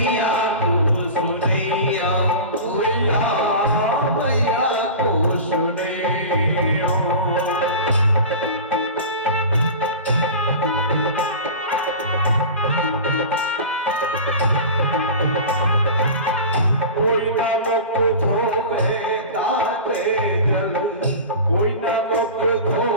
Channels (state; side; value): inverted; both; correlation -0.33